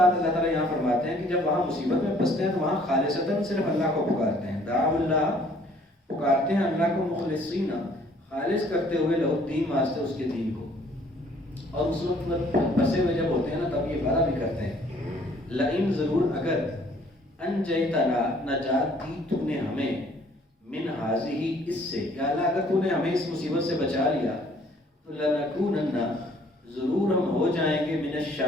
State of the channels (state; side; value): normal; both; correlation 0.59